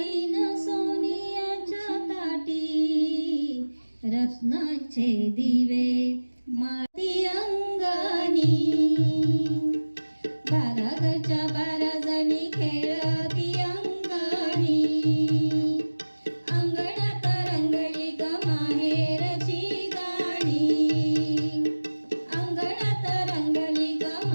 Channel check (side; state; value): both; inverted; correlation -1.00